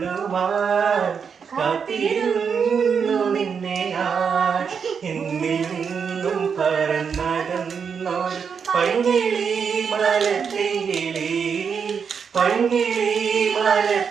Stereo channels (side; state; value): left; quieter; 6.4 dB